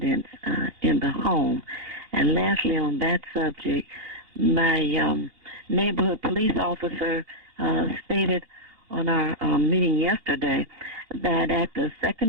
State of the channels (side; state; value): left; late; 2.8 ms